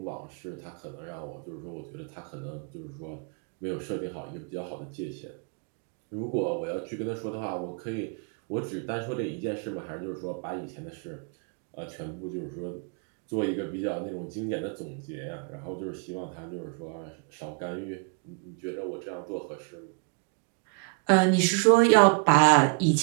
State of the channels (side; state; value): left; quieter; 32.2 dB